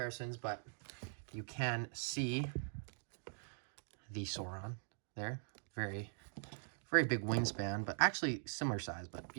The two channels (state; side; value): silent; left; digital silence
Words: but you can see the Sauron there. Very, very big wingspan, but actually similar size, but